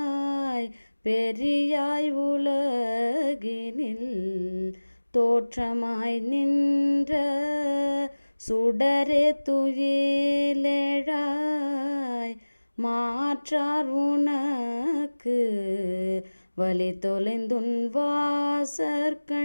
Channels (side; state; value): both; inverted; correlation -1.00